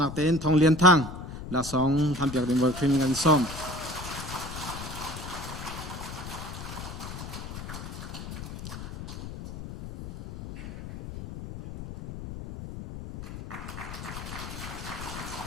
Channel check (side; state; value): left; noise; rumble, 9 dB below the sound